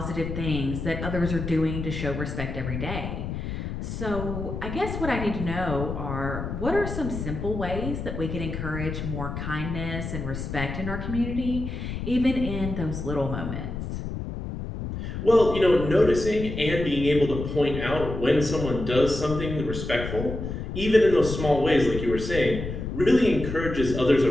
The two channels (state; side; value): noise; left; rumble, 6 dB below the sound